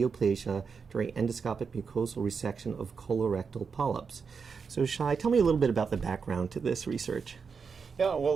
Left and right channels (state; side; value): quieter; left; 5.7 dB